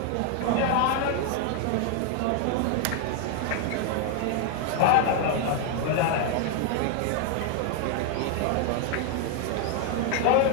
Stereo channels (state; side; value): different; both; correlation 0.00